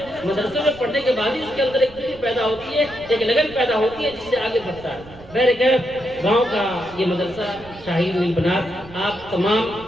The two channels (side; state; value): right; noise; rumble, 20 dB below the sound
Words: مدرسوں میں پڑھنے کے بعد ہی اس کے اندر ایک فکر پیدا ہوتی ہے، ایک لگن پیدا ہوتی ہے، جس سے آگے بڑھتا ہے۔ بہرکیف گاؤں کا یہ مدرسہ شاہین نیل بنات آپ